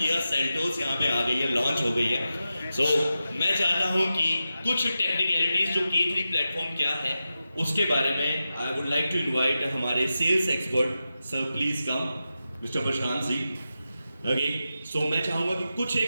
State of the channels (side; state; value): both; inverted; correlation -0.91